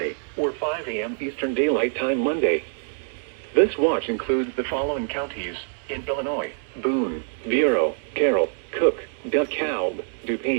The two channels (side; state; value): left; silent; 62 dB below the other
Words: or 5 a.m. Eastern Daylight Time Monday. This watch includes the following counties in Illinois: Boone, Bureau, Carroll, Cook, DeKalb,